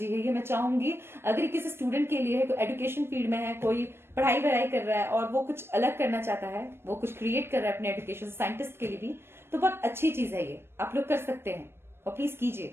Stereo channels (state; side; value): late; left; 0.12 ms